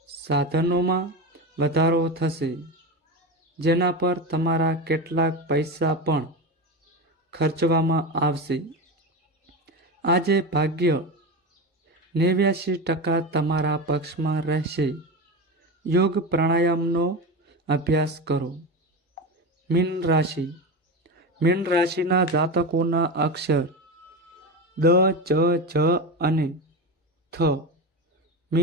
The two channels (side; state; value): both; normal; correlation 0.21